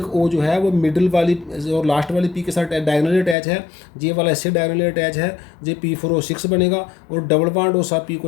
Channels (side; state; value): right; drops out; at 3.4 s